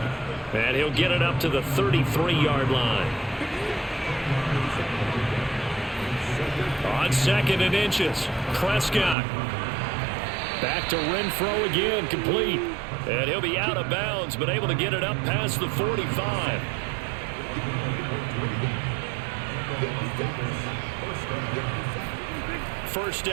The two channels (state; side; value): drops out; left; at 9.2 s